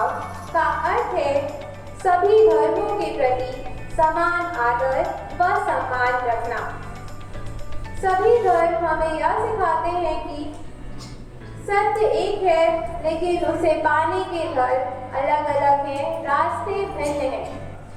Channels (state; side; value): identical; both; correlation 1.00